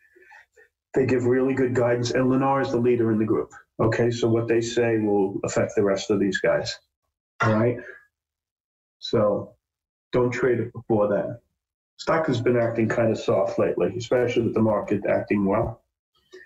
They give really good guidance, and Lennar is the leader in the group. Okay, so what they say will affect the rest of these guys. All right? So don't trade it before that. Stock has been acting kind of soft lately, especially with the market acting well.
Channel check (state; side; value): identical; both; correlation 1.00